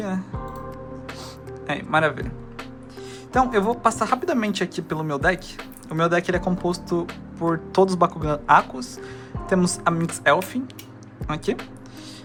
né? Maravilha. Então, eu vou passar rapidamente aqui pelo meu deck. O meu deck ele é composto por todos os Bakugan Akos. Temos a Minx Elfin aqui.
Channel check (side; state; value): both; identical; correlation 1.00